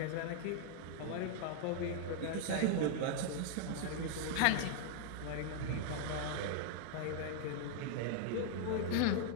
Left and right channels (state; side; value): different; both; correlation -0.01